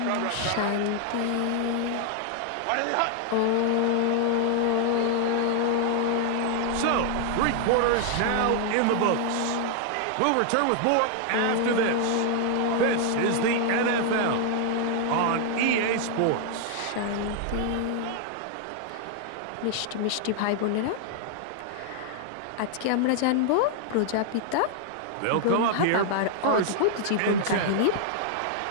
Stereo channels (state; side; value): different; both; correlation 0.00